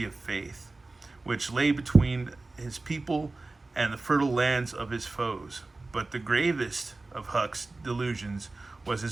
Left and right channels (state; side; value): quieter; left; 3.3 dB